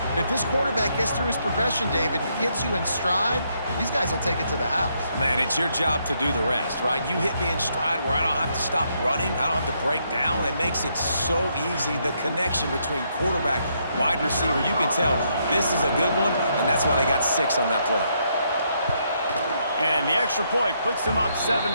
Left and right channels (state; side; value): inverted; both; correlation -0.75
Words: And if this quarterback gets through his progression, David, hits you in stride, these guys will take it to the house. Man, it's your job to do the rest, right? You hit me in stride where I don't have to stop running. I don't have to break down. It makes it so easy, the connection between quarterback, wide receiver. You can tell this is a good one, and that's why they got 6 on that play. And the extra point puts them up 7-2.